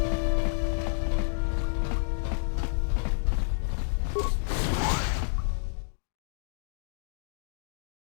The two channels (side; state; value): right; silent; digital silence